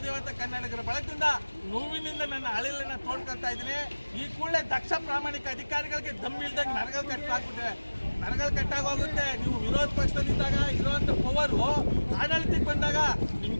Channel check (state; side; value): inverted; both; correlation -1.00